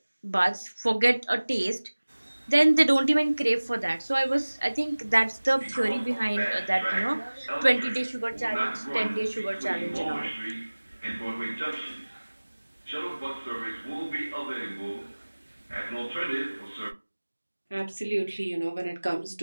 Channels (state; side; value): inverted; both; correlation -1.00